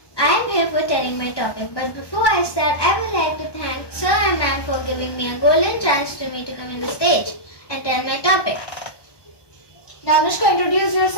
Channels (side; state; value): right; late; 1.2 ms